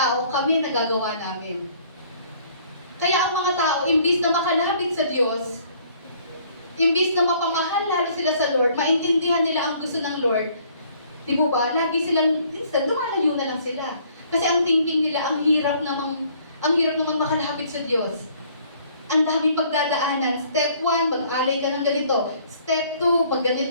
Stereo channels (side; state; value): both; inverted; correlation -0.60